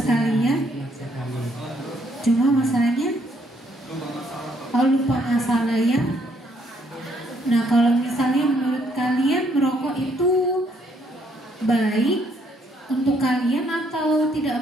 ya. nikmat sekali. Cuma masalahnya lupa masalah ya. Nah, kalau misalnya menurut kalian merokok itu baik untuk kalian atau tidak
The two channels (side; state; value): both; normal; correlation 0.69